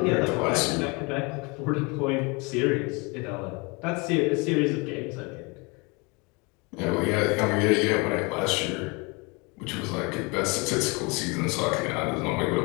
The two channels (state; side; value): quieter; right; 28.7 dB